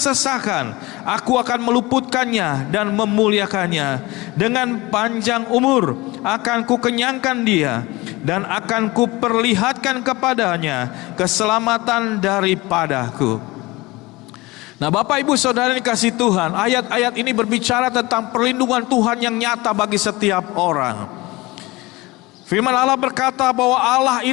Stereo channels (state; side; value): quieter; right; 21.7 dB